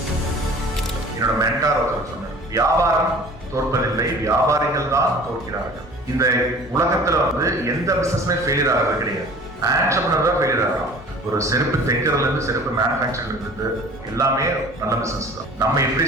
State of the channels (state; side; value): normal; both; correlation 0.45